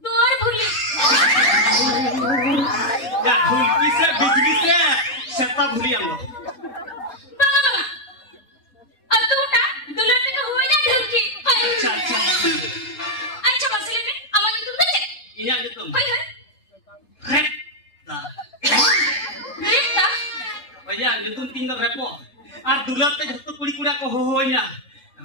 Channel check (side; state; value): right; late; 3.2 ms